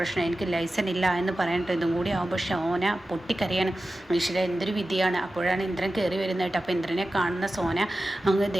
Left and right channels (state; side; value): normal; both; correlation 0.94